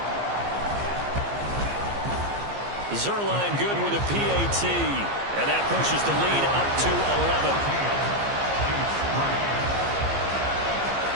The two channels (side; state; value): left; late; 15 ms